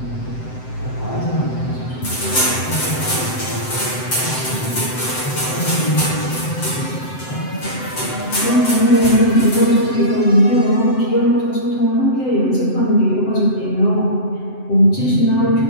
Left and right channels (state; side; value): late; right; 7.8 ms